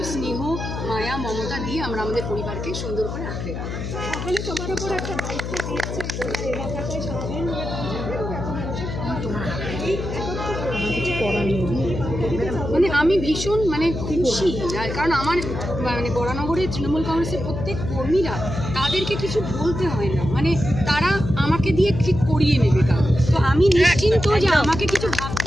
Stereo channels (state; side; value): noise; left; hum, 5 dB below the sound